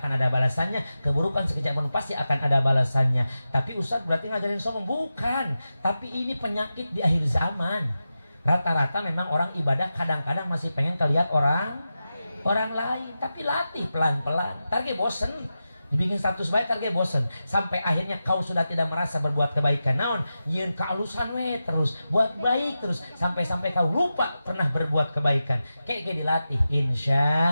ada balasannya, keburukan sekecil apapun pasti akan ada balasannya. Tapi Ustaz berarti ngajarin sombong? Bukan, tapi ini penyakit di akhir zaman. Rata-rata memang orang ibadah kadang-kadang masih pengen kelihat orang lain, tapi latih pelan-pelan. Target bosen. Dibikin status baik target bosen, sampai akhirnya kau sudah tidak merasa berbuat kebaikan. Naon nyeun kealusan we terus buat baik terus sampai kau lupa pernah berbuat kebaikan. Kayak dilatih,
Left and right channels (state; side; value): inverted; both; correlation -0.92